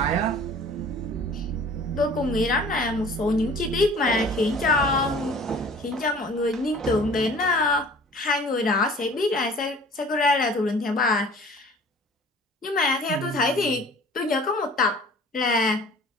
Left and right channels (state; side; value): normal; both; correlation 0.47